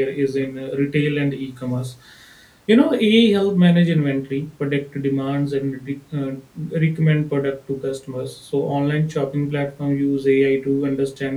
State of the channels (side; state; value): both; identical; correlation 1.00